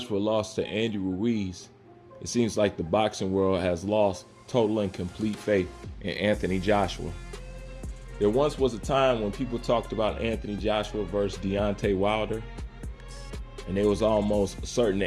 lost to Andy Ruiz, it seems like the boxing world has lost total and complete faith in Anthony Joshua. There once was a time when people talked about Anthony Joshua versus Deontay Wilder, and it was almost certain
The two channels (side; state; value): both; identical; correlation 1.00